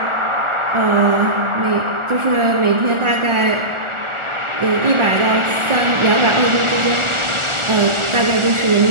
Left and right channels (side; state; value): left; late; 1.4 ms